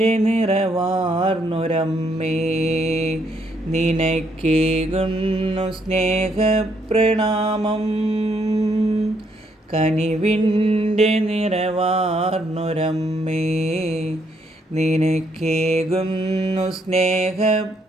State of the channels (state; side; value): normal; both; correlation 0.72